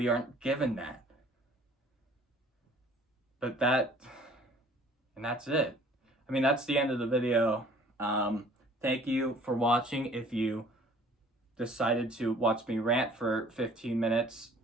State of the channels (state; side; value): normal; both; correlation 0.53